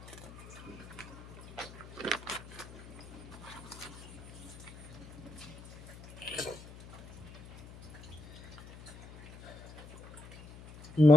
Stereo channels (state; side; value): noise; left; hum, 16 dB below the sound